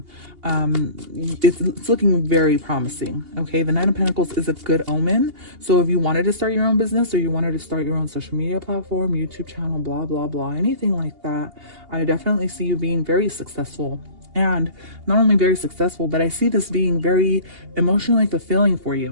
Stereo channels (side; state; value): left; late; 2.8 ms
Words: it's looking very promising, okay? The Nine of Pentacles is a good omen. So if you wanted to start your own business, or you wanted to start your own social media platform, YouTube channel, blah blah blah, anything like that, I definitely see you being very successful. And not only very successful, but I see this being very emotionally fulfilling for